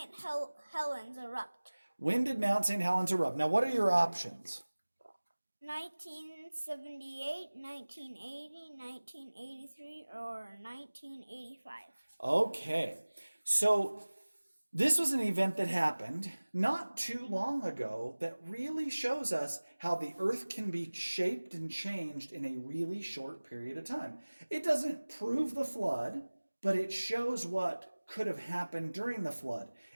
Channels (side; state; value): both; inverted; correlation -1.00